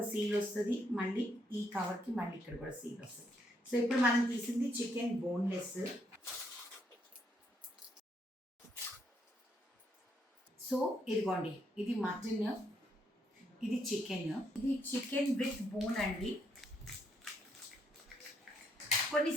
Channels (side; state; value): both; normal; correlation 0.75